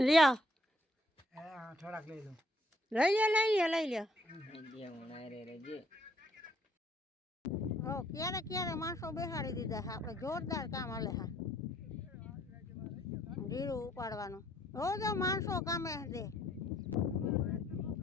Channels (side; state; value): both; normal; correlation 0.66